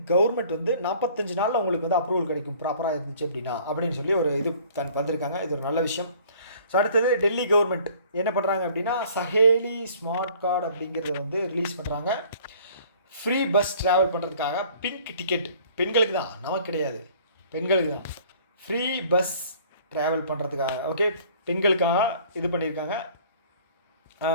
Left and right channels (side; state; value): both; inverted; correlation -0.53